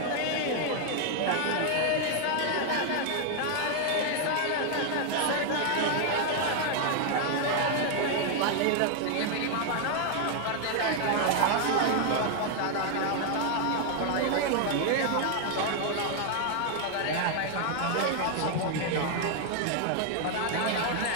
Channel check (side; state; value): both; different; correlation 0.00